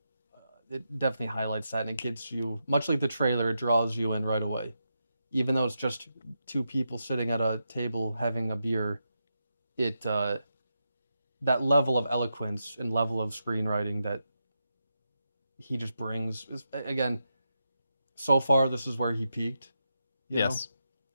it definitely highlights that, and it gets you, much like the trailer, it draws you in right away. Even though it's just two people sitting at a table having a beer, it that level of eloquence and level of screenwriting that he just brings is, again, so far this is where he peaked. Yes.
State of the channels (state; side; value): inverted; both; correlation -0.86